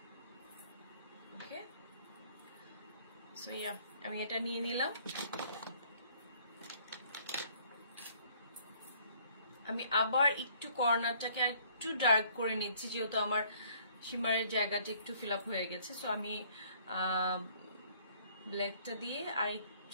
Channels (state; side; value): inverted; both; correlation -0.60